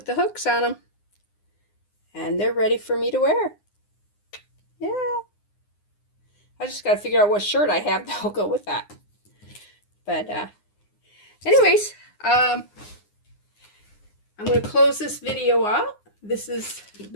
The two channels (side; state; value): right; late; 9.7 ms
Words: the hooks on them. And they're ready for me to wear. Yeah. I just gotta figure out what shirt I have that'll go with that. But anyways, I'm going to close this video out. This is